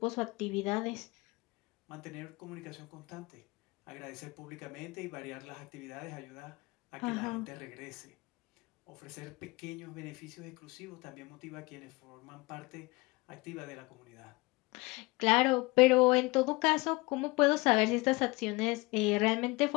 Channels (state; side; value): quieter; right; 24.2 dB